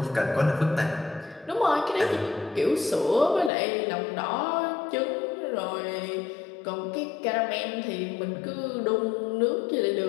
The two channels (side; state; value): right; drops out; at 3.5 s